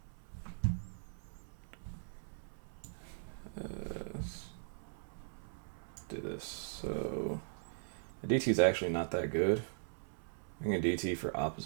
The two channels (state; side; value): silent; left; 51 dB below the other